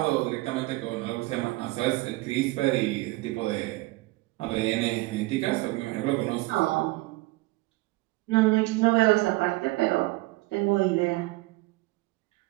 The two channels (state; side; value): quieter; left; 21.2 dB